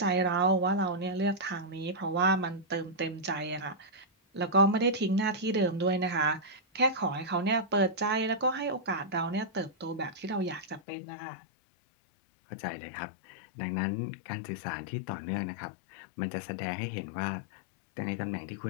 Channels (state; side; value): drops out; right; at 10.8 s